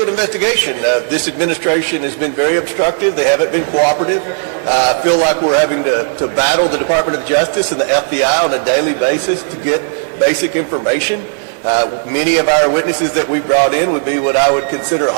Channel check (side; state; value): left; silent; digital silence